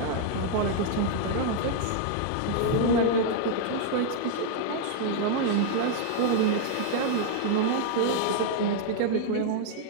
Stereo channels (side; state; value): both; different; correlation 0.00